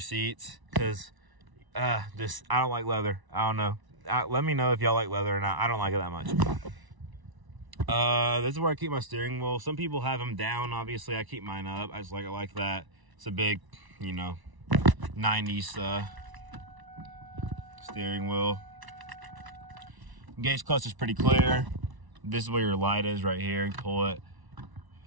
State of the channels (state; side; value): late; left; 1.0 ms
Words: because I don't like leather. I don't know. Let me know if y'all like leather or not. I don't like it that much. This is where I keep my steering wheel. Some people have them down. Obviously, I keep mine up. I just like it like that. It's a big, you know, 90s steering wheel. Gauge clutch is pretty clear. This is where your light is right here. You pull it,